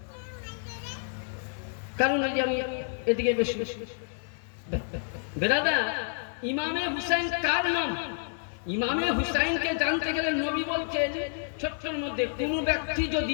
কারণ ওই যে আমি এদিকে বেশি বেরাদা। ইমামে হুসাইন কার নাম? ইমামে হুসাইনকে জানতে গেলে নবী বলছেন ছোট্টর মধ্যে কোন ব্যক্তি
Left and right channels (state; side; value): silent; right; digital silence